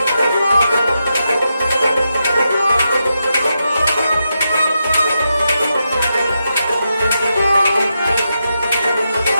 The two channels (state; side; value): inverted; both; correlation -0.86